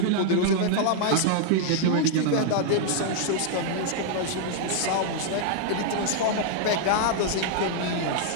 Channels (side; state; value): both; different; correlation -0.01